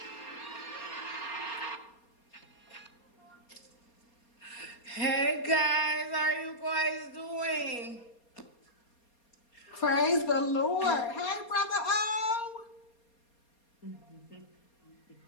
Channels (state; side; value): late; right; 4.3 ms